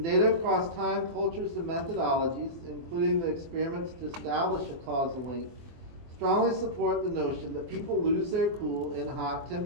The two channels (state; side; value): late; left; 23 ms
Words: data across time, cultures, and methodologies, including the experiments to establish a causal link, strongly support the notion that people lose their cool in hot